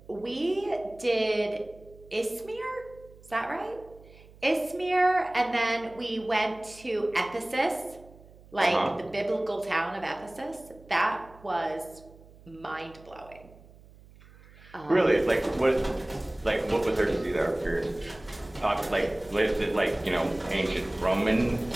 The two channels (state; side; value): noise; right; hum, 23 dB below the sound